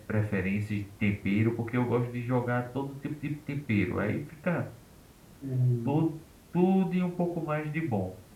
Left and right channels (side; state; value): both; identical; correlation 1.00